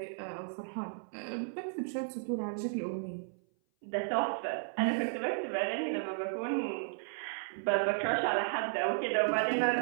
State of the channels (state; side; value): silent; left; 55 dB below the other